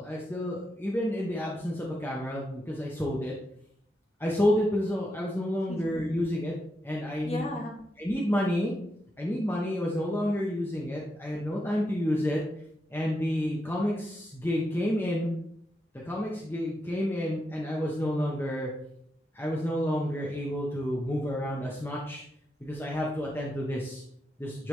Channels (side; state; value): both; normal; correlation 0.84